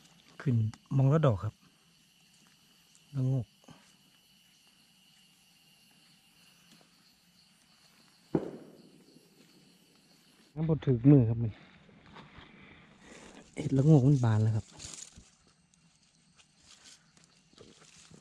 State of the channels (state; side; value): identical; both; correlation 1.00